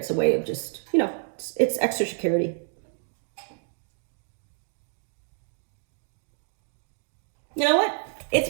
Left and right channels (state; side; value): silent; left; 59 dB below the other